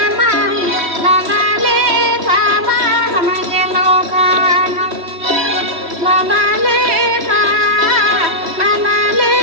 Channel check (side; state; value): left; late; 3.0 ms